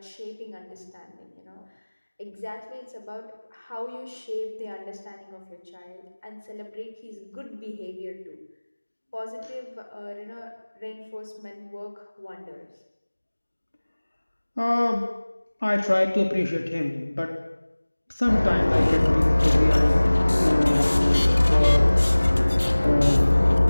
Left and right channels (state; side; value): inverted; both; correlation -1.00